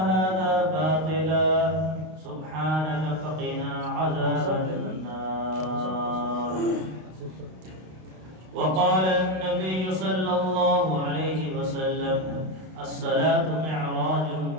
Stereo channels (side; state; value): left; late; 32 ms